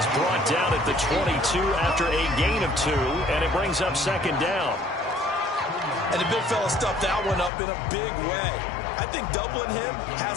brought down at the 22 after a gain of 2, and it brings up 2nd down. And the big fella stuffed that one up in a big way. I think doubling him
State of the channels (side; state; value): right; drops out; at 7.5 s